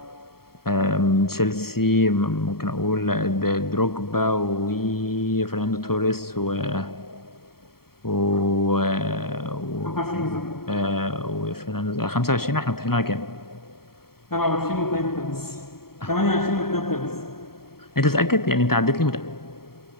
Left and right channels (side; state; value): right; late; 0.94 ms